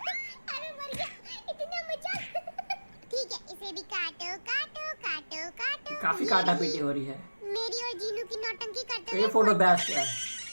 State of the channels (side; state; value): both; inverted; correlation -1.00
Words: अरे मर गया, इतना मजाक। ठीक है, इसे भी काटो काटो काटो काटो। काफी ये काटा रही पीटी हो रही है। मेरी और जीनू की नौटंकी करते ये फोटो बेस्ट है।